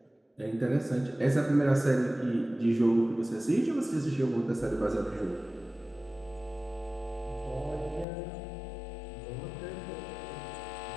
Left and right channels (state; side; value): drops out; right; at 8.1 s